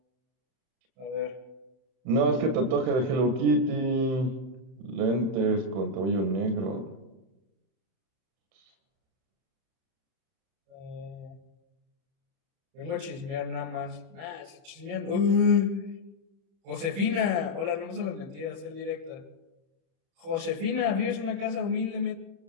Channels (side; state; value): left; late; 31 ms